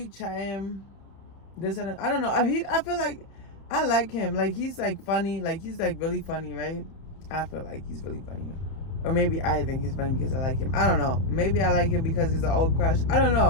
chatting. This and that. I don't know. I feel like I like him. Like, he's like funny. Like, he's like really funny, right? I feel like he's really funny. Or maybe I think he's funny because I like him. I don't know. Maybe I like him because he's an old crush. I don't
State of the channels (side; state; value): right; late; 31 ms